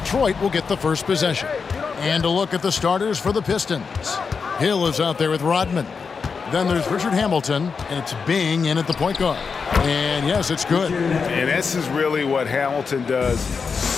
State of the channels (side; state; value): right; quieter; 5.4 dB